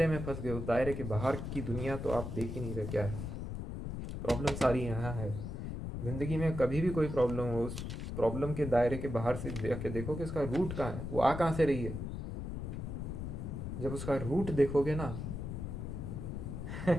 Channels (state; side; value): noise; left; rumble, 5 dB below the sound